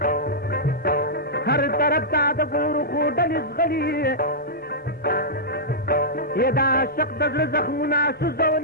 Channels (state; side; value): normal; both; correlation -0.12